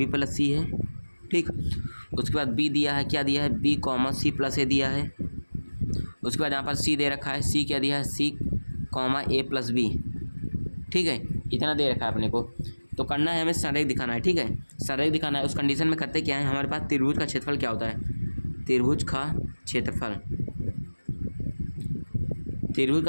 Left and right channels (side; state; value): both; inverted; correlation -1.00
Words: + C है, ठीक। उसके बाद B दिया है, क्या दिया है B, C + A दिया है। उसके बाद यहाँ पर C दे रखा है, C क्या दिया है C, A + B, ठीक है, इतना दे रखा है अपने को। तो करना है हमें संरेख दिखाना है, ठीक है, संरेख दिखाना है। उस कंडीशन में करते क्या है, हमारे पास त्रिभुज का क्षेत्रफल क्या होता है, त्रिभुज का क्षेत्रफल